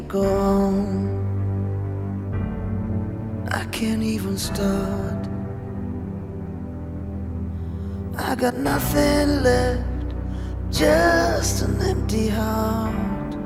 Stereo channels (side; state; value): both; identical; correlation 1.00